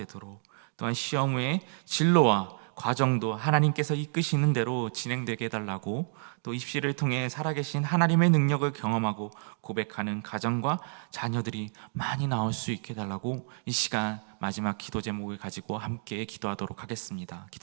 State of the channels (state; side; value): silent; left; digital silence